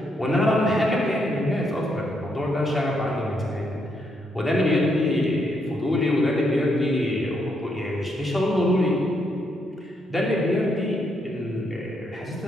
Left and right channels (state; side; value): normal; both; correlation 0.77